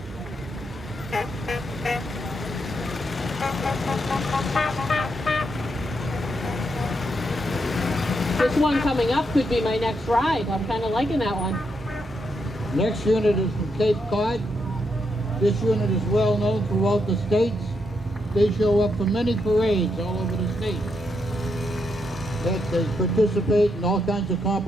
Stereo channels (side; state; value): both; normal; correlation 0.80